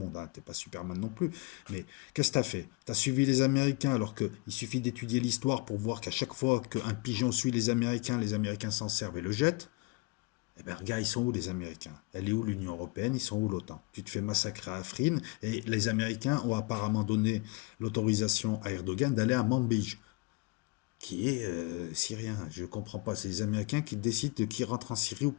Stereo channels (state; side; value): quieter; right; 27.4 dB